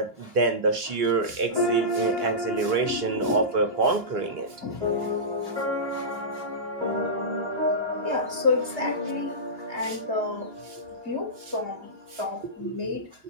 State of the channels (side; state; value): left; late; 2.9 ms